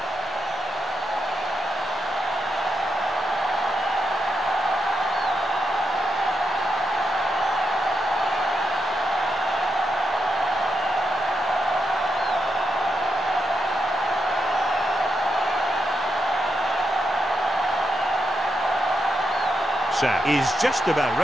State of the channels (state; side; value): normal; both; correlation 0.84